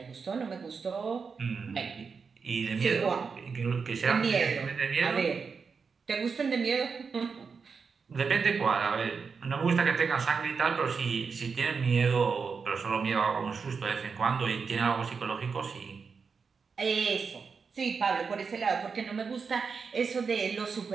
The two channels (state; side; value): quieter; left; 5.4 dB